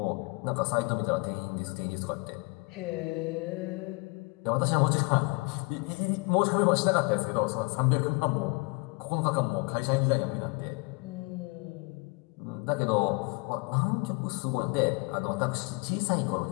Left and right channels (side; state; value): right; quieter; 28.7 dB